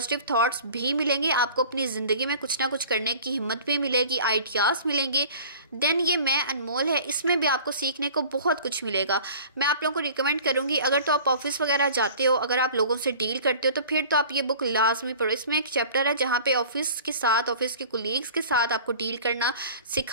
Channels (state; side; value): inverted; both; correlation -0.45